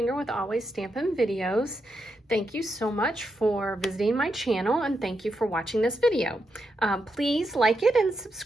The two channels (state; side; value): normal; both; correlation 0.84